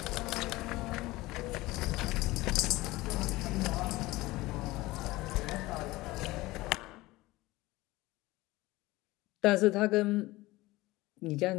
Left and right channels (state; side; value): quieter; right; 19.5 dB